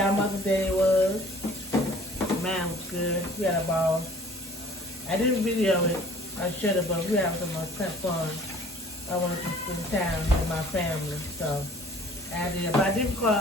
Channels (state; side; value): normal; both; correlation 0.51